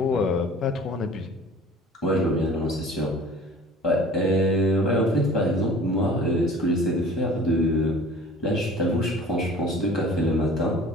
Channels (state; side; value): normal; both; correlation 0.46